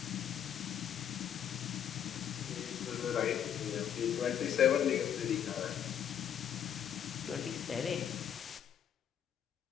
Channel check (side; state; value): right; quieter; 9.2 dB